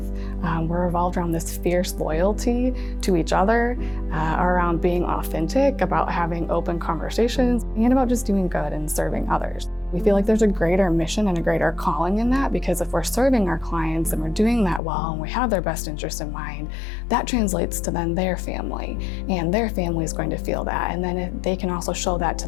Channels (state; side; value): drops out; right; at 14.8 s